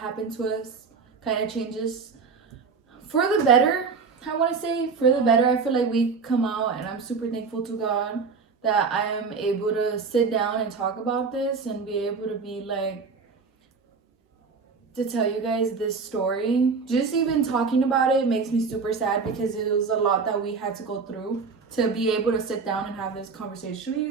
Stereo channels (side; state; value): left; quieter; 5.0 dB